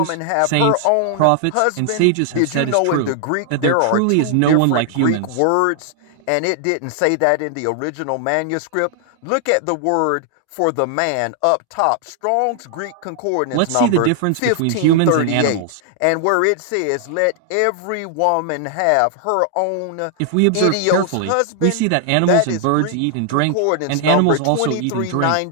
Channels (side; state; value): both; different; correlation 0.00